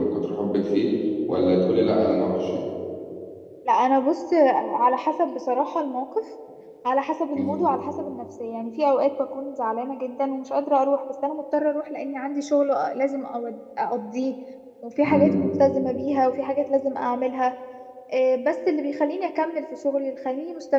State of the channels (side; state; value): both; identical; correlation 1.00